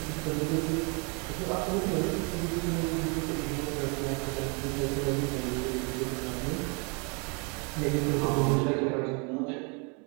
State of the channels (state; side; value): quieter; left; 33.6 dB